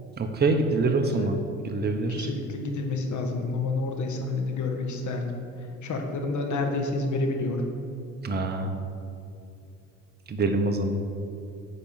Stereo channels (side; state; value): both; normal; correlation 0.43